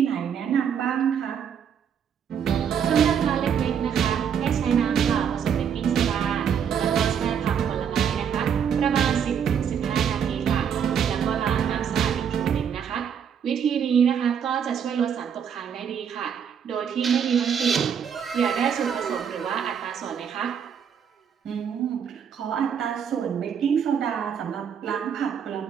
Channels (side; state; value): left; quieter; 7.8 dB